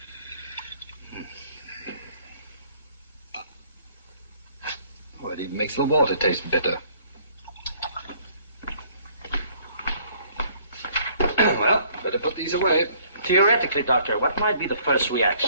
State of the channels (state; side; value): inverted; both; correlation -0.60